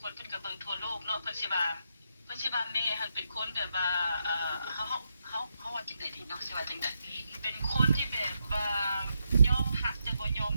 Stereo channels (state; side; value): inverted; both; correlation -0.82